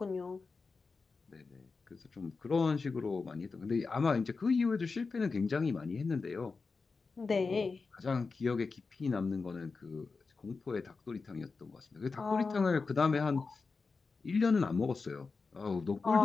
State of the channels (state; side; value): quieter; right; 4.4 dB